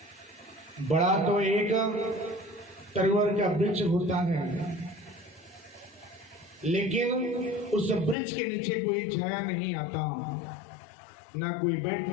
बड़ा तो एक तरवर का वृक्ष होता है, लेकिन उस वृक्ष के नीचे कोई छाया नहीं आता, ना कोई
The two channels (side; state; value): right; drops out; at 8.2 s